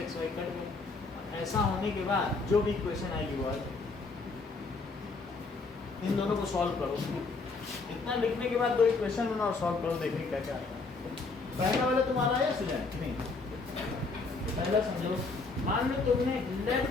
xy कट गए। ऐसा होने के बाद जो भी इक्वेशन आएगी वो आएगी। इन दोनों को सॉल्व करो, इतना लिखने के बाद 2 इक्वेशन बनाओ और सॉल्व करो, देखिए क्या क्या आएगा। पहला वाला तुम्हारा आया स्टूडेंट नहीं, पहला समझो, मान लो तुमने let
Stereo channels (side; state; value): right; quieter; 4.0 dB